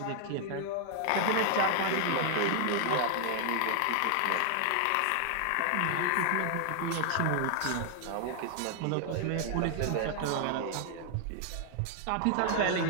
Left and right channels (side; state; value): both; different; correlation 0.00